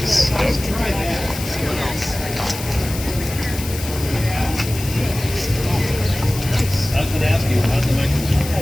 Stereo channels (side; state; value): left; noise; hiss, 10 dB below the sound